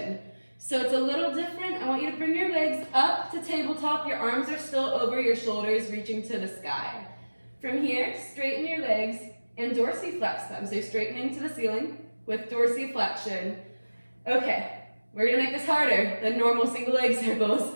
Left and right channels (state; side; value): inverted; both; correlation -1.00